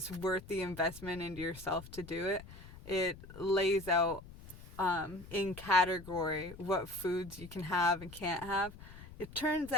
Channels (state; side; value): noise; left; rumble, 16 dB below the sound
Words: worth the investment into yourself to do it. It lays out in category what foods you can have and can't have. It turns